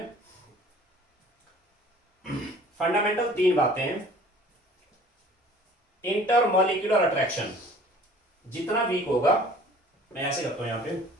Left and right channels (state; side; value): normal; both; correlation 0.50